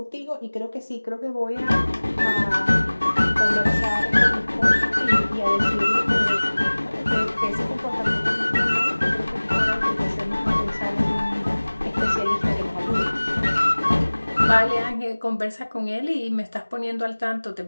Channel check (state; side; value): inverted; both; correlation -1.00